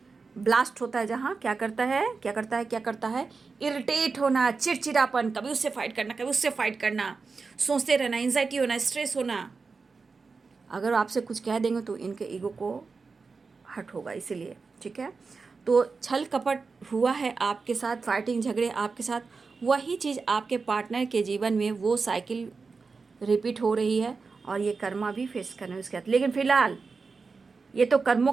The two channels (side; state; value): left; quieter; 4.6 dB